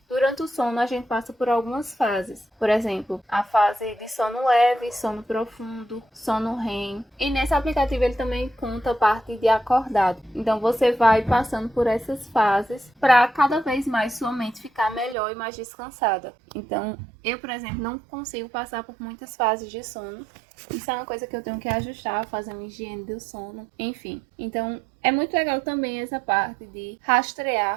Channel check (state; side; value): drops out; left; at 15.2 s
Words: durante o sono a gente passa por algumas fases. Por exemplo, a fase de sono leve, sono profundo, sono REM. E nesse aplicativo ele também conta a parte de acordado. Então você vai passando por essas fases para cada vez mais sua mente ficar melhor e mais descansada. Então eu, por exemplo, não consigo passar por muitas fases de sono. Isso é uma coisa que eu tenho que ajustar, fazer uma higiene do sono, enfim. Então, é muito legal também essa parte de